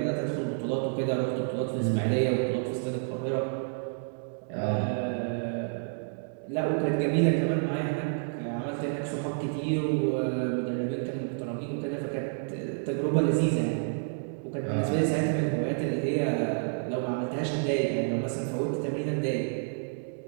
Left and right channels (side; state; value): left; silent; digital silence